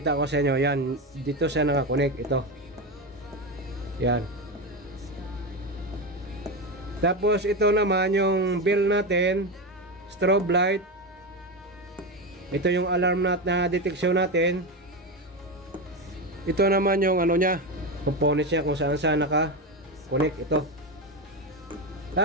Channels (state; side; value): normal; both; correlation 0.16